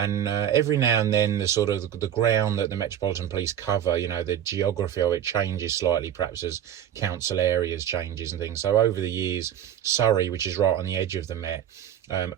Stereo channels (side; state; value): left; quieter; 10.2 dB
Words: every now and then the ground that the Metropolitan Police cover, the geography of it changes slightly, perhaps as council areas changes and things. So over the years, Surrey, which is right on the edge of the Met,